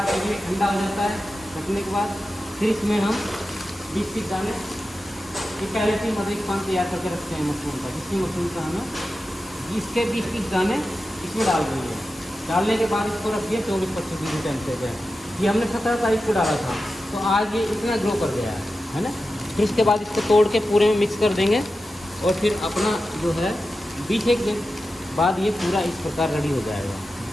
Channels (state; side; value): normal; both; correlation 0.92